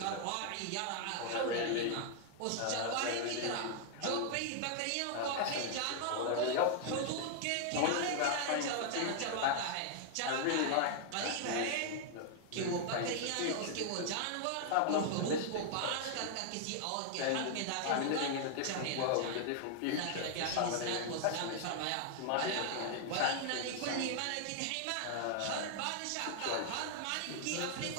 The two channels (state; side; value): different; both; correlation 0.00